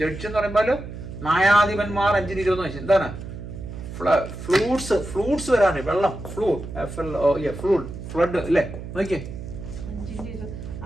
ജഡ്ജ് എന്ന് പറയുമ്പോൾ ന്യായാധിപന്മാർ 5:20 നോക്കി. എന്താണ്? ഫ്ലൂട്ട്സ് വരാണ്. വെള്ളം, ഫ്ലഡ് അല്ലേ? നോക്കിയേ.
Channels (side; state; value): right; noise; hum, 10 dB below the sound